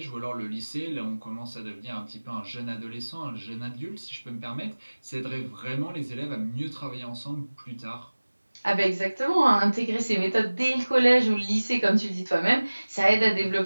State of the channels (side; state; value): both; inverted; correlation -1.00